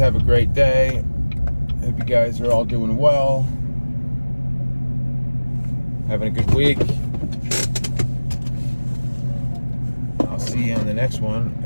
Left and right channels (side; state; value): both; inverted; correlation -1.00